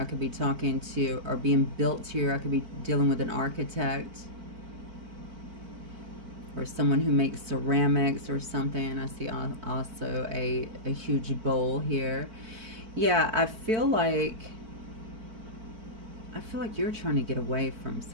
could be talking to, or being built here. I could be dealing with an architect, or someone who makes ceramics or something. I see also a huge bowl here. Yeah, I feel like you're trying to get away from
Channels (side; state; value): left; late; 4.5 ms